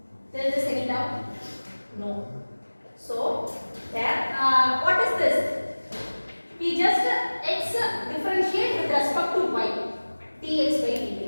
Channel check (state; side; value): inverted; both; correlation -1.00